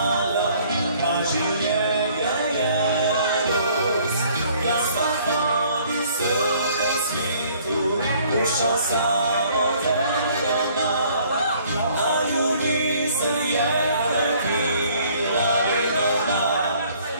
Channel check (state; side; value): inverted; both; correlation -0.59